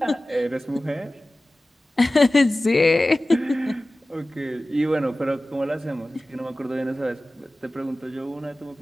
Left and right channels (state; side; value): normal; both; correlation 0.96